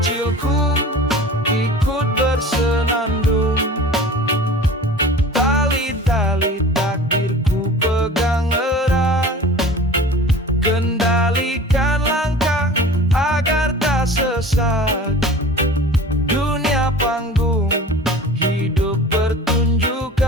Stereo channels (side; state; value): both; normal; correlation 0.40